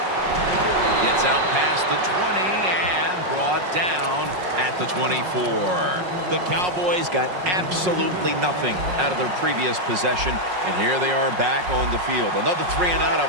Gets out past the 20 and brought down at the 24. The Cowboys got absolutely nothing out of their previous possession, and here they are back on the field. Another 3 and out, I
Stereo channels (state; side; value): late; left; 5.5 ms